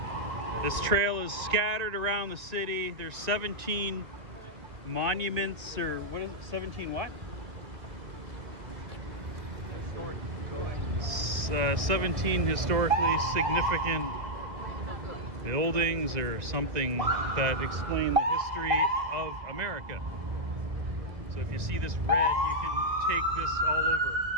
This trail is scattered around the city. There's 17 monuments, or what is it? 17 what? 17 historically significant buildings or something that explain the history of America. So if you see this red, you can take this all over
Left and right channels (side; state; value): left; late; 1.9 ms